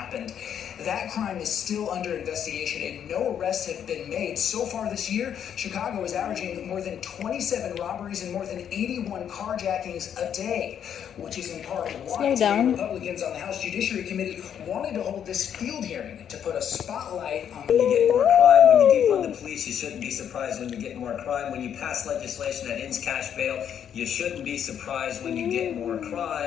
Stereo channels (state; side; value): quieter; right; 8.9 dB